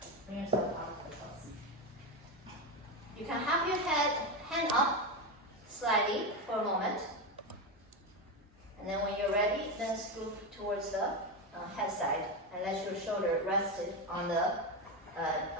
Bring yourself out of the pose. You can have your hand up slightly for a moment. And then when you're ready, then scoop towards the head side and let your shoulder rest on the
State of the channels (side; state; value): both; normal; correlation 0.14